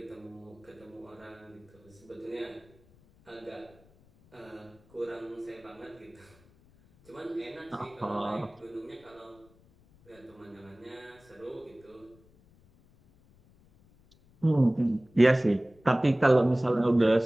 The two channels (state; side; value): noise; left; rumble, 29 dB below the sound